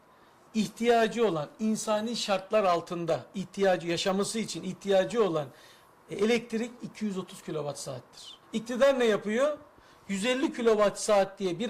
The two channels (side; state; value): both; identical; correlation 1.00